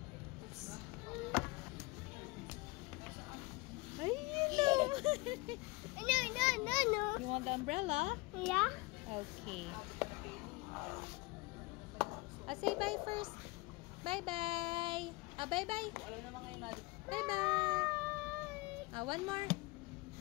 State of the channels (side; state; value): right; quieter; 24.5 dB